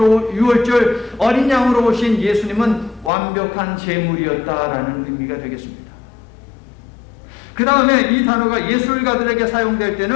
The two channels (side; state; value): right; drops out; at 3.1 s